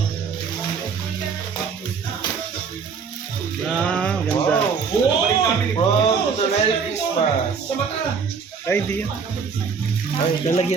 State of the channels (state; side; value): quieter; left; 5.8 dB